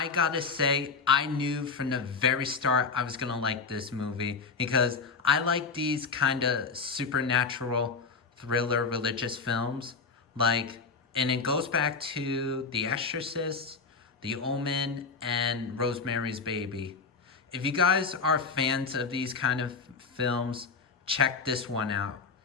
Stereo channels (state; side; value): quieter; right; 4.9 dB